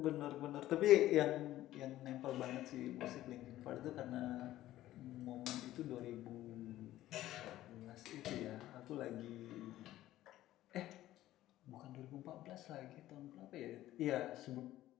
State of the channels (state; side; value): quieter; right; 14.5 dB